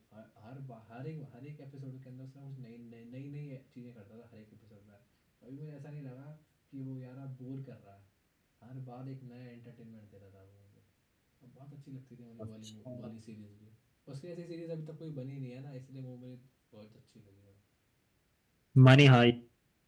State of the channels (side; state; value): both; identical; correlation 1.00